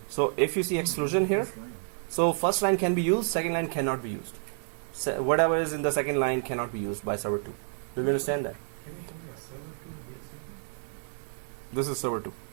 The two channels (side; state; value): left; silent; 57 dB below the other